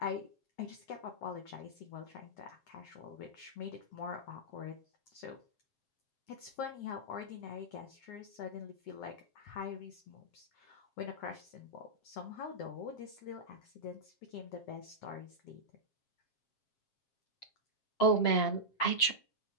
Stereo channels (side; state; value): right; late; 7.5 ms